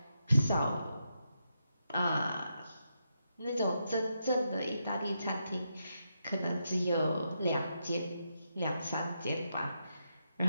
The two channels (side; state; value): both; inverted; correlation -0.83